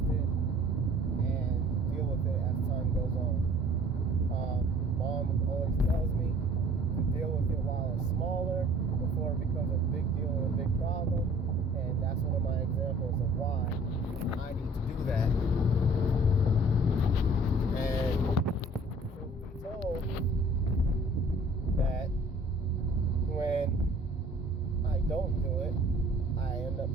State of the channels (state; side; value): normal; both; correlation 0.52